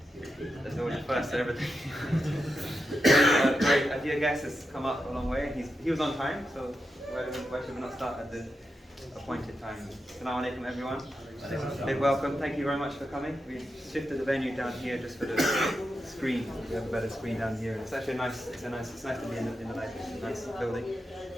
there's always a first to everything. Great, a dear guest has come up a long way. He was on time, so why should we not start at the appointed time? Assalamu alaikum, everyone. Big welcome. Thank you very much for coming. We've shifted the venue down here just for the screen. We have a better screen down here. It's actually nice. It's nice to be in the nice building.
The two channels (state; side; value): normal; both; correlation 0.88